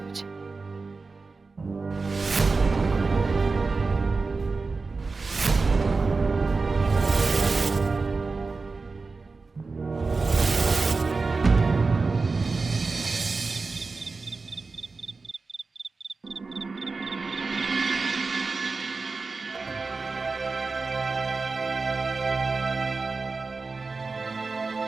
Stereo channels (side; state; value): left; quieter; 4.1 dB